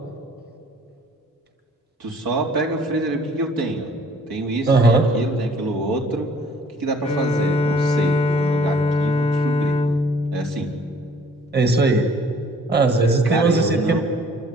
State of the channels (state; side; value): normal; both; correlation 0.56